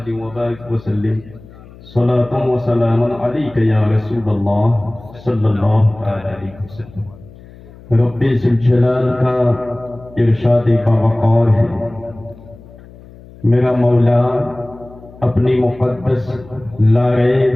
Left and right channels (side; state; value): left; noise; hum, 21 dB below the sound